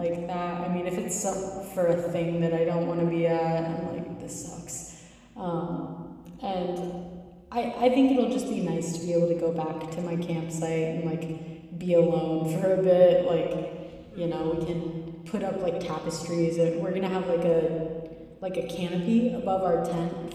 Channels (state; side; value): identical; both; correlation 1.00